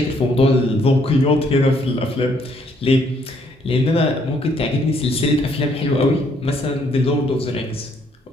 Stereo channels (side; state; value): both; normal; correlation 0.68